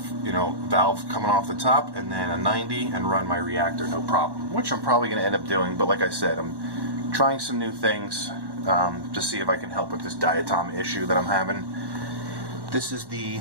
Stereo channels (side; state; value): left; late; 1.1 ms